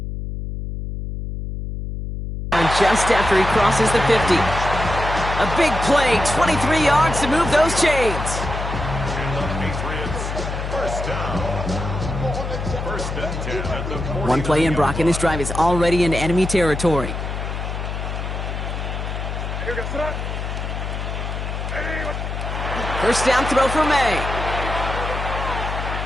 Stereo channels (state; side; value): noise; left; hum, 5 dB below the sound